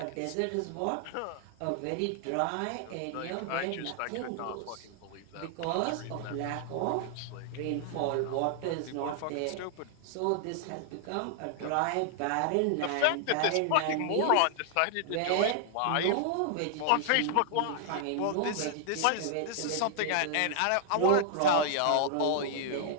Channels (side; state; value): both; different; correlation -0.01